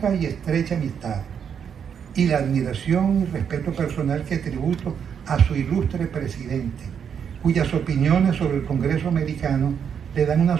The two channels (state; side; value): quieter; left; 7.6 dB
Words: y estrecha amistad, y la admiración y respeto personal que tributo a su ilustre presidente, cuyas opiniones sobre el Congreso americano le dan una